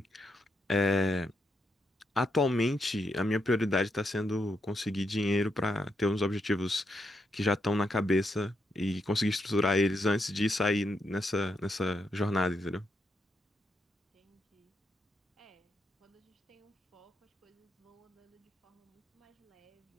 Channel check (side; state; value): both; normal; correlation 0.81